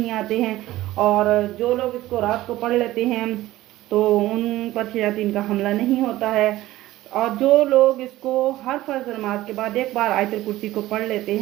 आते हैं, और जो लोग इसको रात को पढ़ लेते हैं तो उन पर शयातीन का हमला नहीं होता है। और जो लोग इसको हर फर्ज नमाज के बाद एक बार आयतुल कुर्सी को पढ़ लेते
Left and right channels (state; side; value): quieter; left; 16.2 dB